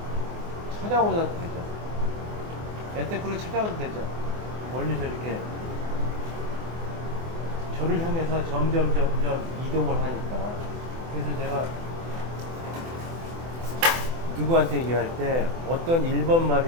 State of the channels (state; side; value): late; left; 24 ms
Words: 찾아오셔도 되죠. 야테크로 찾아오도 되죠. 멀리서 이렇게 저를 향해서 점점 이동을 하니까. 그래서 제가 누구한테 얘기할 때 어떤 일본